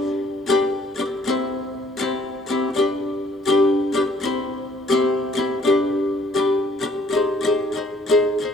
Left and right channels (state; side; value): normal; both; correlation 0.62